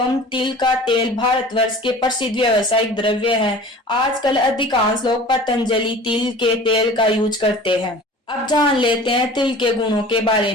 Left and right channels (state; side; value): normal; both; correlation 0.42